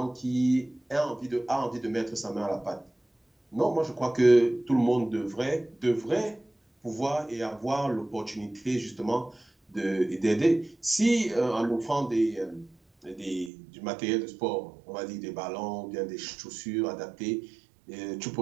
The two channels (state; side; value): drops out; left; at 13.5 s